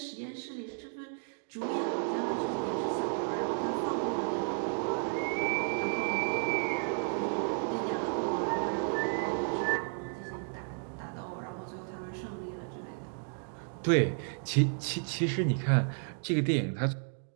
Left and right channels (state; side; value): silent; left; 56 dB below the other